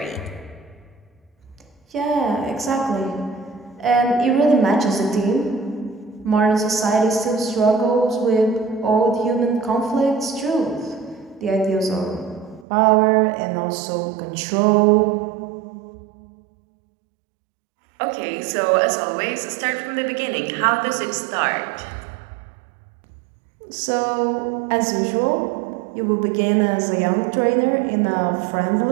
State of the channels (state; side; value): drops out; left; at 12.7 s